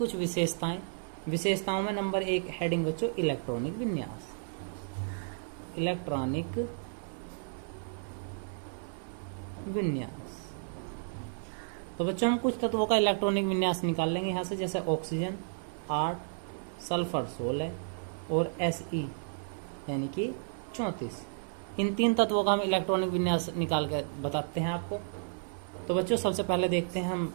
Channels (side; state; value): left; silent; 56 dB below the other